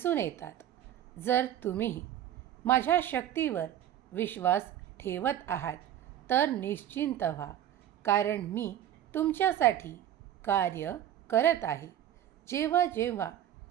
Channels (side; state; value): left; quieter; 11.3 dB